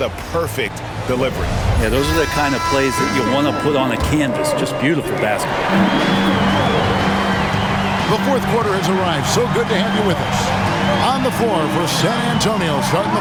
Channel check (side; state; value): both; identical; correlation 1.00